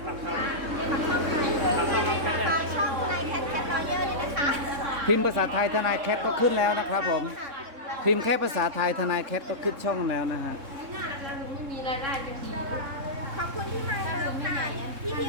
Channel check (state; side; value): late; left; 3.7 ms